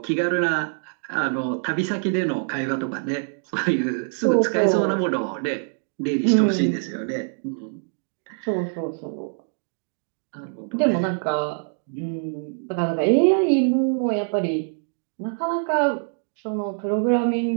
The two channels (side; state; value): left; silent; 59 dB below the other